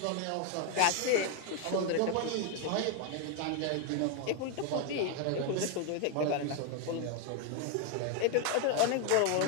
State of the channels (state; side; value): different; both; correlation 0.01